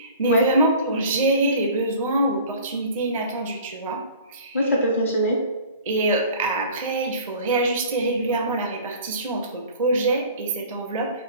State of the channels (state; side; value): inverted; both; correlation -0.44